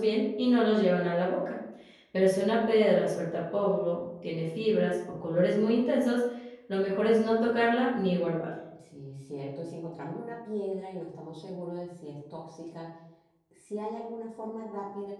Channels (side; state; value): both; identical; correlation 1.00